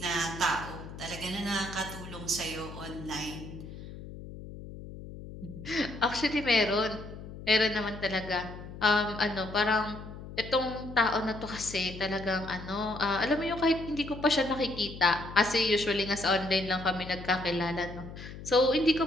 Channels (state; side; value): noise; left; hum, 12 dB below the sound